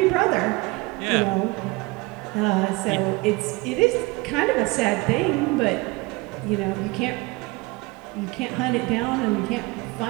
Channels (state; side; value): quieter; left; 23.8 dB